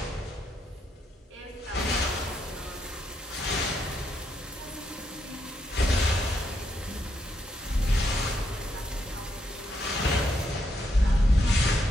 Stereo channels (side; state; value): both; normal; correlation 0.78